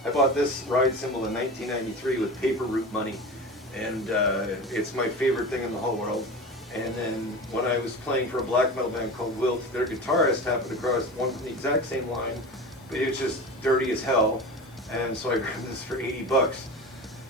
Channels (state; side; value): noise; left; hiss, 28 dB below the sound